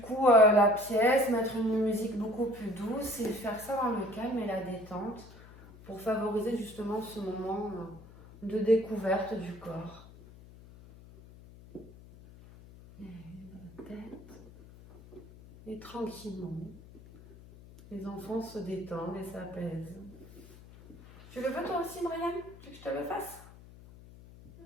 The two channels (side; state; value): left; noise; hum, 20 dB below the sound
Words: coup la pièce, mettre une musique beaucoup plus douce et faire ça dans le calme et la détente pour favoriser justement ce moment de découverte du corps. Et la tête. Et tranquillement, les enfants se détendent et s'apaisent. Tu le veux toi aussi, Brian? Tu veux que je te le fasse?